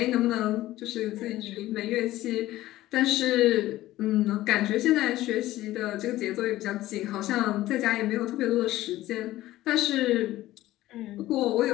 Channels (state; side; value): quieter; right; 15.8 dB